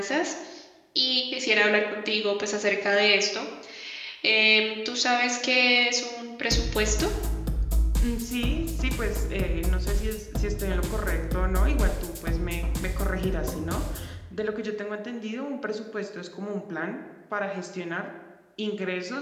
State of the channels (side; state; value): both; identical; correlation 1.00